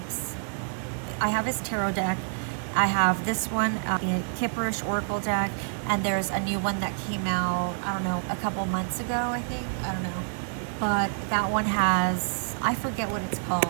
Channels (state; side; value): silent; left; digital silence